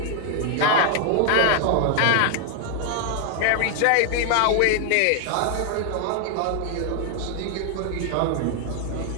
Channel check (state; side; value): different; both; correlation 0.00